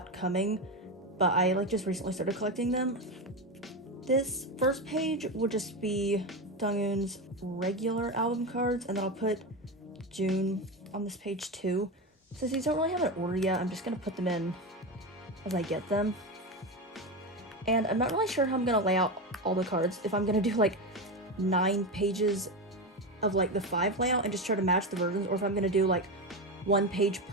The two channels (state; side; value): normal; both; correlation 0.17